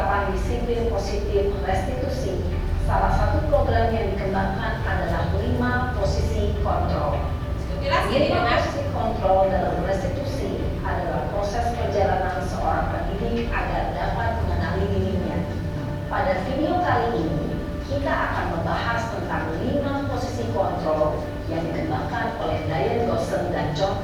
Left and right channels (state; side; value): identical; both; correlation 1.00